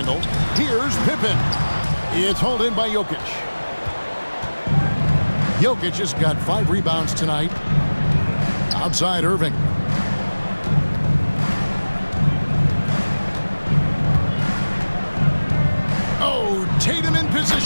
Here's Pippen. It's hauled in by Jokic. Jokic has got 5 rebounds tonight. Outside Irving. Oh, Tatum in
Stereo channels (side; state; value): both; inverted; correlation -1.00